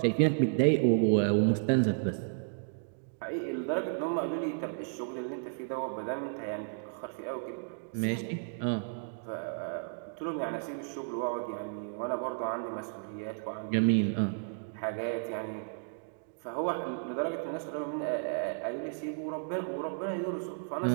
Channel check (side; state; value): left; silent; digital silence